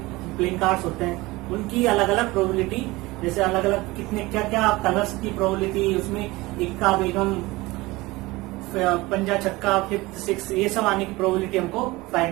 प्लेइंग कार्ड्स होते हैं, उनकी अलग अलग प्रोबेबिलिटी, जैसे अलग अलग कितने क्या क्या कलर्स की प्रोबेबिलिटी, उसमें इक्का, बेगम, पंजा, छक्का, फिफ्थ, सिक्स, ये सब आने की प्रोबेबिलिटी हमको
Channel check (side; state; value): left; quieter; 21.0 dB